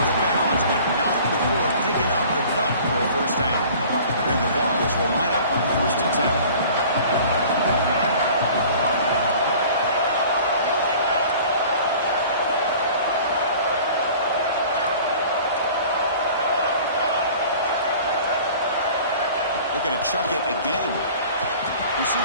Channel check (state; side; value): inverted; both; correlation -0.46